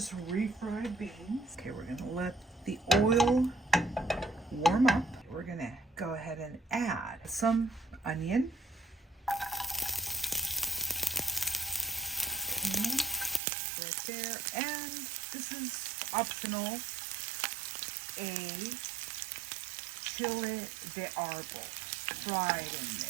refried beans. Okay, we're going to let the oil warm up. We're going to go ahead and add some onion. Okay, right there. And this is optional. A chile de arbol fried in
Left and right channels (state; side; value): drops out; left; at 13.4 s